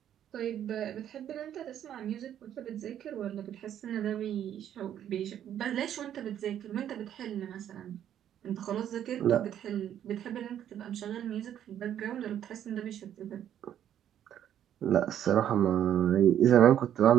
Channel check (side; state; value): left; quieter; 10.4 dB